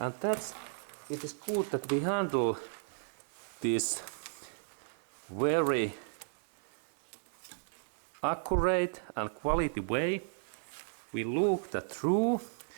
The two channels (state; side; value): silent; left; digital silence